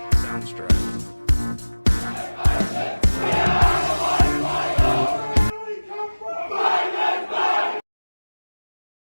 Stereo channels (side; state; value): both; inverted; correlation -1.00